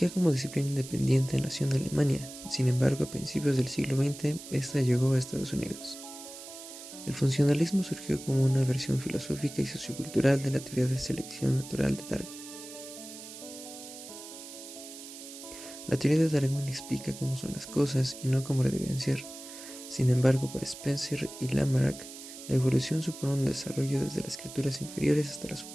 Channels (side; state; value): right; noise; hiss, 13 dB below the sound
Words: como disciplina independiente nació en Alemania, sin embargo a principios del siglo XX esta llegó a Estados Unidos. El funcionalismo surgió como una versión filosófica y sociocultural de la teoría de selección natural de Darwin. La teoría de Darwin explica cómo son las cosas y no cómo deben ser. Sin embargo, para Spencer y Lamarck, la evolución supone un desarrollo desde las criaturas inferiores hasta las